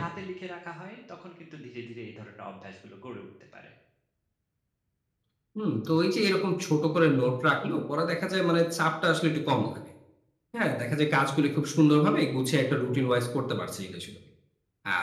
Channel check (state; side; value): identical; both; correlation 1.00